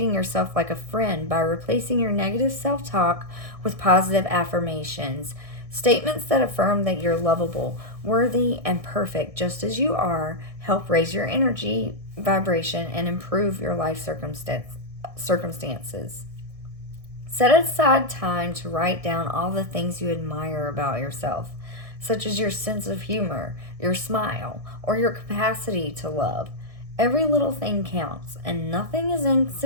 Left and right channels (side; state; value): left; late; 1.6 ms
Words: yourself like a friend by replacing your negative self talk with positive affirmations. Statements that affirm that you're lovable, worthy, and perfect just as you are help raise your energy vibration and improve your life circumstances. Set aside time to write down all the things you admire about yourself, such as your sense of humor, your smile, or your capacity to love. Every little thing counts, and nothing is